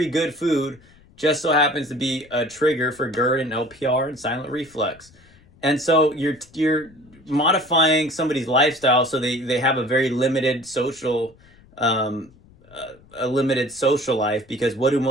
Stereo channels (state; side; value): noise; left; rumble, 27 dB below the sound